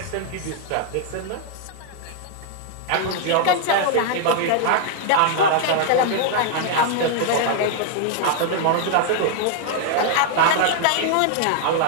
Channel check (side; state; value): both; different; correlation 0.00